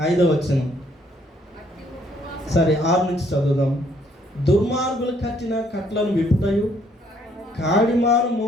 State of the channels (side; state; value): both; normal; correlation 0.66